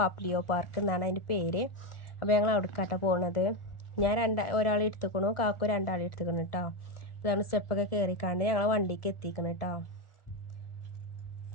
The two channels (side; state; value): right; late; 1.4 ms